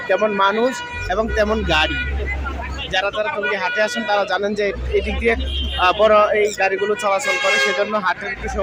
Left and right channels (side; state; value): both; identical; correlation 1.00